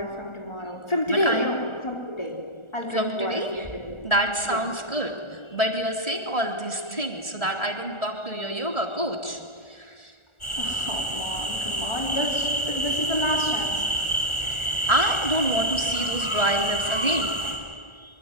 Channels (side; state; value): right; late; 1.4 ms